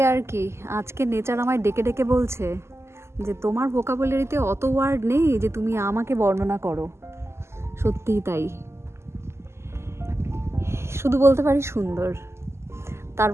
আর কি। আজকে নেচার আমায় ডেকে ডেকে বলছে যে তোমার ভোকাবুলারিতে অত ওয়ার্ড নেই যে তুমি আমাকে বর্ণনা করো। সত্যিই তাই, শুধু বলতে পারি সুন্দর, তার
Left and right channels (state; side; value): late; left; 0.13 ms